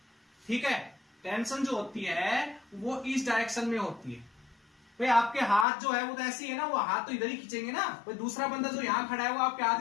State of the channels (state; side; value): drops out; right; at 5.7 s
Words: ठीक है, टेंशन जो होती है वो इस डायरेक्शन में होती है। भाई आपके हाथ जो है वो तो ऐसे ही है ना, वो हाथ तो इधर ही खींचेंगे ना, भाई दूसरा बंदा जो यहां खड़ा है वो आपके